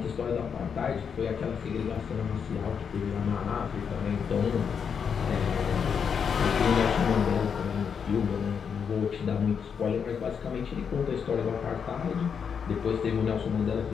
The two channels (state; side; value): quieter; right; 6.8 dB